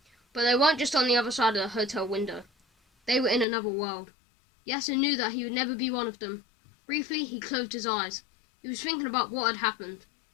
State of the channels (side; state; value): right; drops out; at 3.5 s